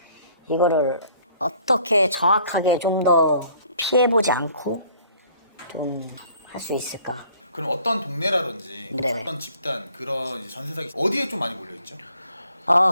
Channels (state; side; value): inverted; both; correlation -0.57